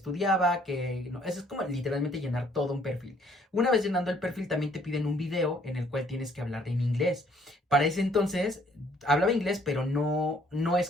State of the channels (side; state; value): both; normal; correlation 0.63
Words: que no, eso es como literalmente llenar todo un perfil. Una vez llenando el perfil también te piden un video en el cual tienes que hablar en inglés. Para ese entonces hablaba inglés, pero no es